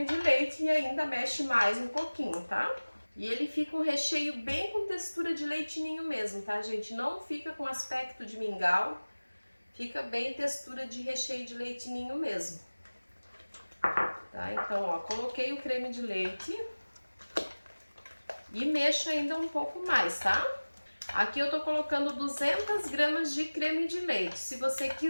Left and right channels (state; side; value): inverted; both; correlation -1.00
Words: de leite e ainda mexe mais um pouquinho, tá? E ele fica um recheio bem com textura de leite ninho mesmo, tá, gente? Não fica com aspecto de mingau, fica bem textura de recheio de leite ninho mesmo. Tá? Então, ó, coloquei o creme de leite e mexo ainda um pouco mais, tá? Aqui eu tô colocando 200 gramas de creme de leite. Se você